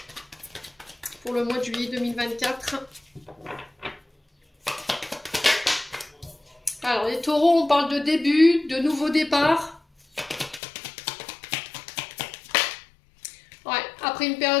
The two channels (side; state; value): right; drops out; at 10.6 s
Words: Pour le mois de juillet 2024. Alors, les taureaux, on parle de début, de nouveau départ. Ouais, après une